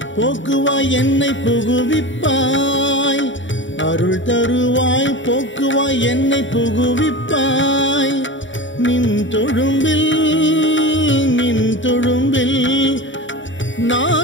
போக்குவாய் என்னை புகுவிப்பாய் அருள் தருவாய் போக்குவாய் என்னை புகுவிப்பாய் நின் தொழும்பில்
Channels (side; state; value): right; late; 0.55 ms